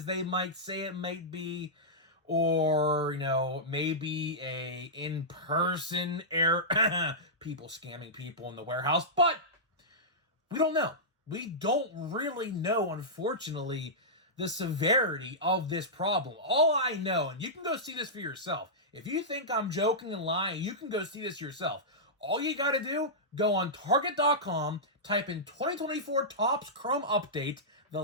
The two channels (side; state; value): both; normal; correlation -0.13